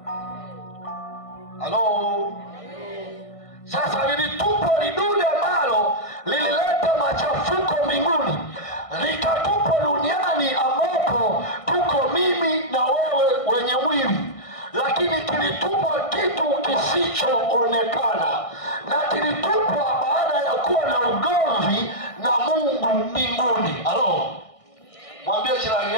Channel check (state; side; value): late; right; 1.6 ms